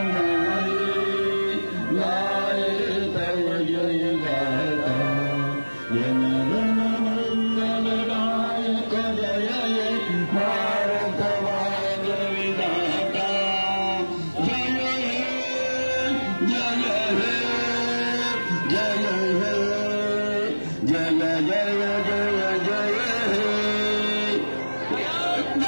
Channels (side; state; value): both; inverted; correlation -1.00